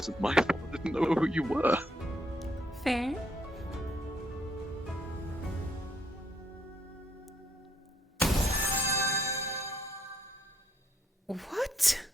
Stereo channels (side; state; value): both; normal; correlation 0.72